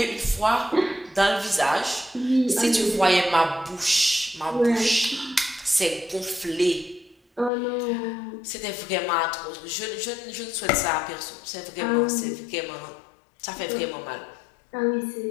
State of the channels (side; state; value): right; drops out; at 7.5 s